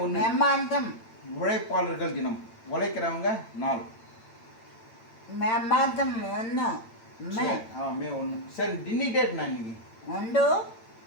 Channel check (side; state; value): right; late; 8.9 ms